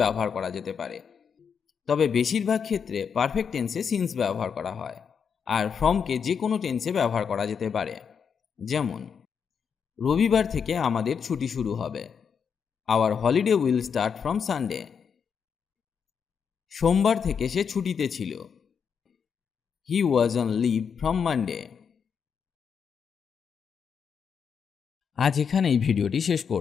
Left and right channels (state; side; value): quieter; right; 6.7 dB